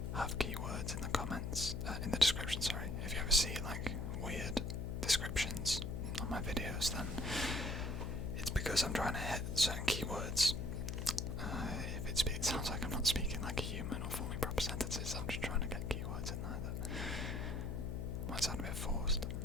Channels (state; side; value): noise; left; hum, 2 dB below the sound